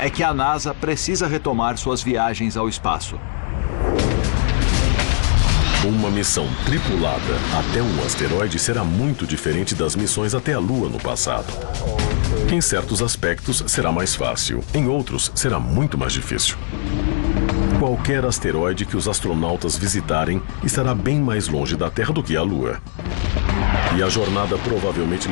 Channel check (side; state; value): right; silent; digital silence